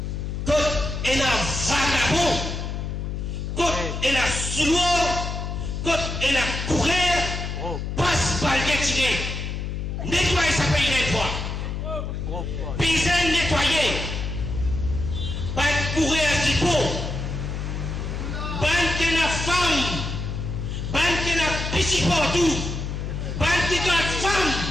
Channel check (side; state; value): left; noise; hum, 4 dB below the sound